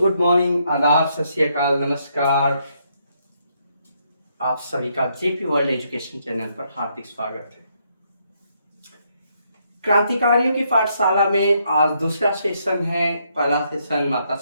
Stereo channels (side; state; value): both; inverted; correlation -0.75